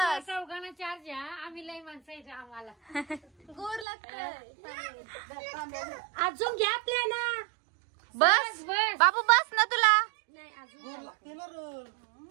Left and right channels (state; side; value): drops out; left; at 3.9 s